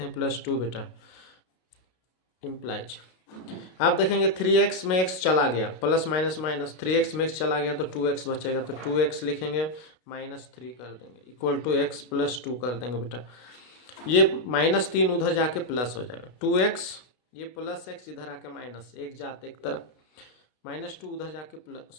हैं +2 बेटा इम्प्लाइज। आप देखेंगे 3x में x चला गया, प्लस माइनस माइनस 3x में x चला गया तो 2x बचेगा, तो 2x लिखेंगे -3 कर देंगे इक्वल टू x +2 कर देंगे बेटा। ये -3 उधर जाके प्लस हो जाएगा, 2x ये प्लस x इधर आके माइनस, एक जाते एक तरफ, -2 उधर जाके प्लस,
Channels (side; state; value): right; late; 32 ms